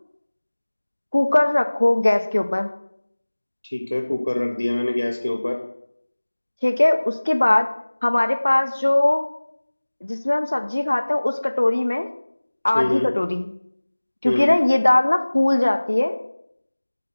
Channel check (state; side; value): inverted; both; correlation -1.00